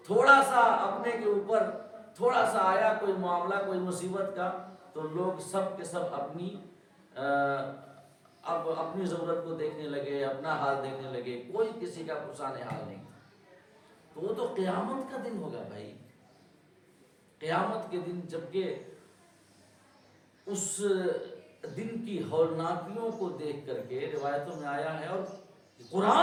تھوڑا سا اپنے کے اوپر تھوڑا سا آیا کوئی معاملہ، کوئی مصیبت کا، تو لوگ سب کے سب اب اپنی ضرورت کو دیکھنے لگے، اپنا حال دیکھنے لگے، کوئی کسی کا پرسان حال نہیں تھا۔ تو وہ تو قیامت کا دن ہوگا بھائی، قیامت کے دن، جبکہ اس دن کی ہولناکیوں کو دیکھ کر کے روایتوں میں آیا ہے، اور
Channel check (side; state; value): both; identical; correlation 1.00